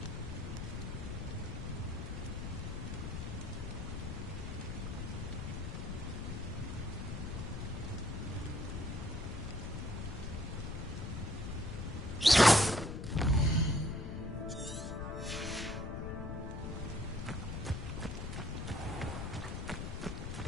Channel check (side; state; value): left; noise; rumble, 4 dB below the sound